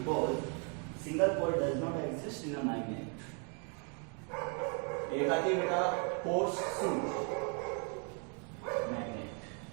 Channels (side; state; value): left; quieter; 39.8 dB